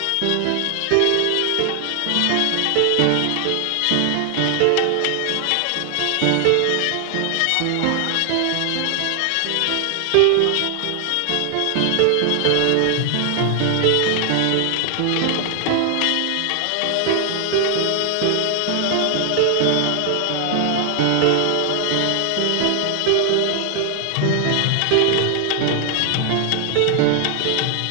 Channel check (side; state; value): both; different; correlation 0.00